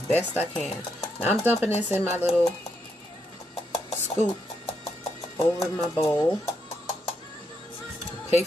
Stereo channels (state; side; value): normal; both; correlation 0.79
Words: best I can. Now I'm dumping this in my little scoop over my bowl. Pay